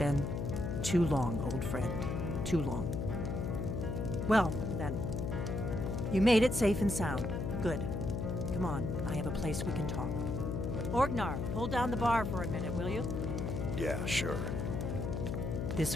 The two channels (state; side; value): noise; left; hum, 2 dB below the sound